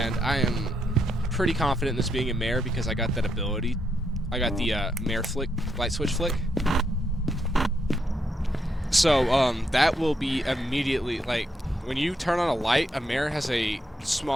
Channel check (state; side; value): normal; both; correlation 0.78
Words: I am pretty confident in this being a Mare because I got that ability. I got the Mare flick, light switch flick. So that will be immediately, like, when you turn on a light, a Mare has a